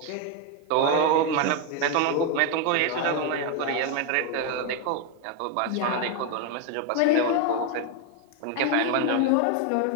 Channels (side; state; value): both; different; correlation 0.02